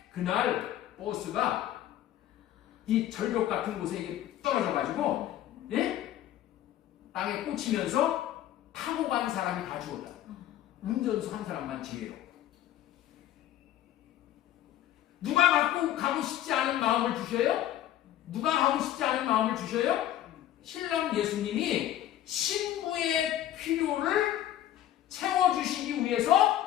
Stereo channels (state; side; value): quieter; right; 12.3 dB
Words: 그날 버스가 이 절벽 같은 곳에 떨어져가지고, 땅에 꽂히면서 타고 간 사람이 다 죽었다. 운전수 한 사람만 제외로. 누가 가고 싶지 않은 마음을 주셔요? 누가 가고 싶지 않은 마음을 주셔요? 신랑 예수님이 신부의 필요를 채워주시기